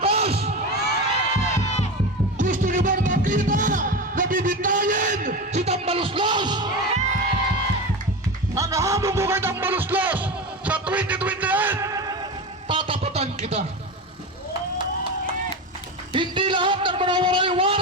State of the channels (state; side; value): normal; both; correlation 0.23